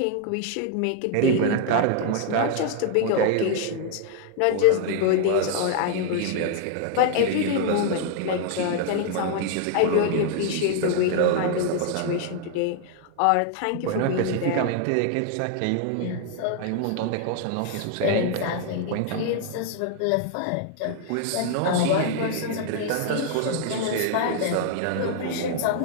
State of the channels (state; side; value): different; both; correlation 0.00